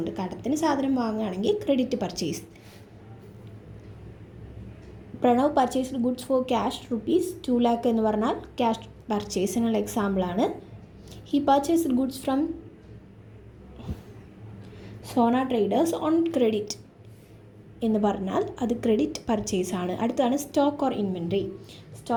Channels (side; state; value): both; identical; correlation 1.00